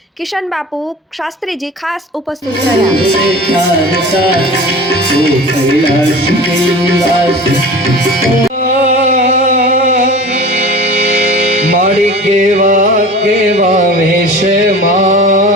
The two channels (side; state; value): both; normal; correlation 0.37